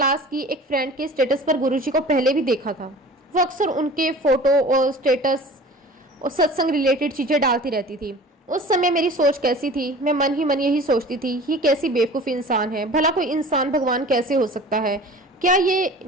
की एक फ्रेंड के स्टेटस पर गुरुजी को पहले भी देखा था। वो अक्सर उनके फोटो और स्टेटस और सत्संग रिलेटेड चीजें डालती रहती थी। उस समय मेरी सोच कैसी थी, मैं मन ही मन यही सोचती थी, ये कैसी बेवकूफ़ इंसान है, भला कोई इंसान भगवान कैसे हो सकता है। क्या ये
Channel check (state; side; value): normal; both; correlation 0.42